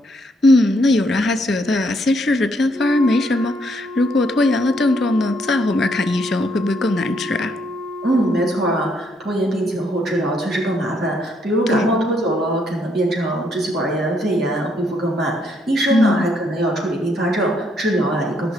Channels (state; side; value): normal; both; correlation 0.72